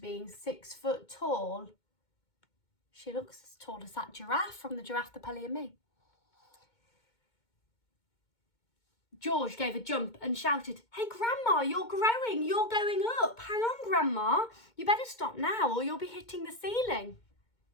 6 foot tall, she looks as tall as that giraffe from the Giraffe, the Pelly and Me. George gave a jump and shouted, "Hey, Grandma, you're growing, you're going up. Hang on, Grandma. You better stop now or you'll be hitting the ceiling."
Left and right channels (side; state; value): right; late; 2.2 ms